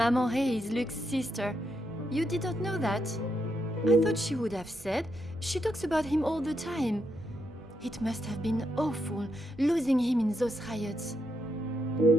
Ray is Luke's sister. You didn't know that? I thought she would have said. She talks about him all the time. It must have been awful, losing him in those riots.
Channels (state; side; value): normal; both; correlation 0.80